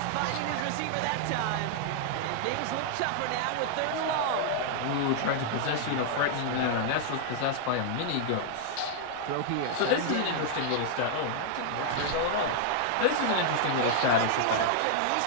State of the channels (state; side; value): different; both; correlation -0.01